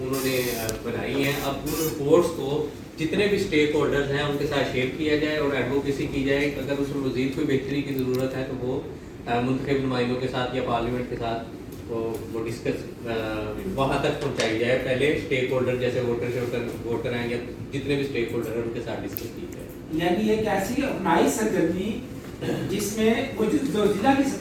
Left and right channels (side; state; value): both; identical; correlation 1.00